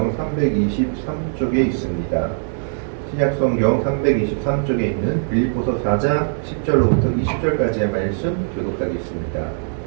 323쪽에 있습니다. 신약성경 323쪽에 있는 빌립보서 4장 10절로부터 20절까지의 말씀 교독하겠습니다.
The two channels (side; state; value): left; silent; digital silence